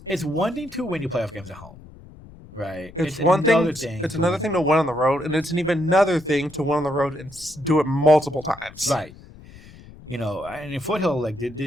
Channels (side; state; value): left; noise; rumble, 20 dB below the sound